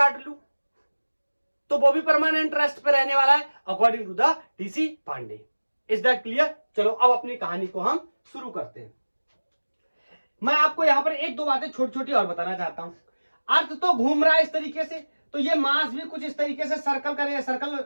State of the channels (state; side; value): inverted; both; correlation -1.00